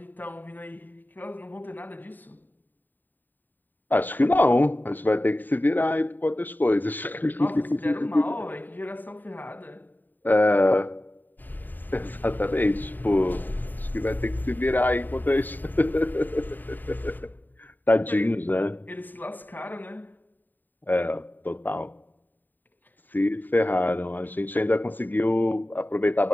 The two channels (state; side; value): late; right; 0.089 ms